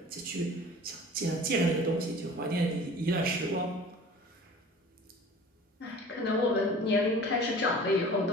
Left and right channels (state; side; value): normal; both; correlation 0.44